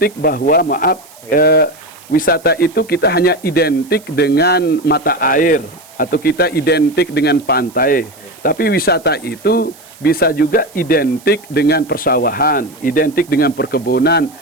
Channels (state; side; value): noise; right; hiss, 24 dB below the sound